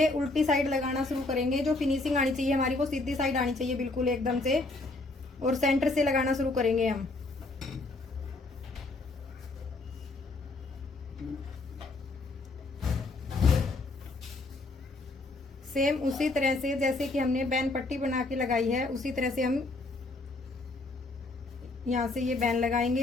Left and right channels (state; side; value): quieter; right; 3.1 dB